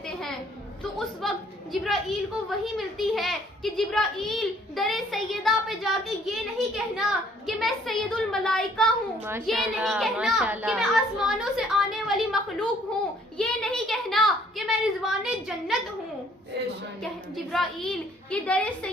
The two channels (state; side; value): normal; both; correlation 0.61